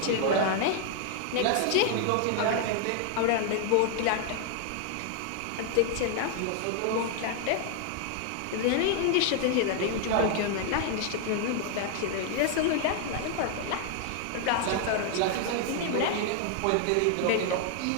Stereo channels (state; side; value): different; both; correlation 0.00